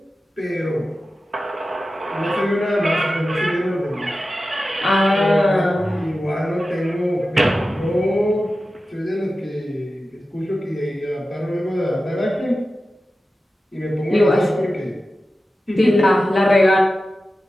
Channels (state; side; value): normal; both; correlation 0.93